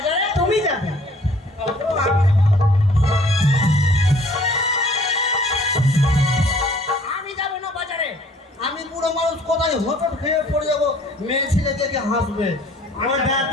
তুমি যাবে। আমি যাবো না বাজারে। আমি বুড়ো মানুষ, কোথায় হোঁচট খেয়ে পড়ে যাবো, মেয়ে ছেলে দেখে হাসবে। ও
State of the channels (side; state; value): both; normal; correlation 0.56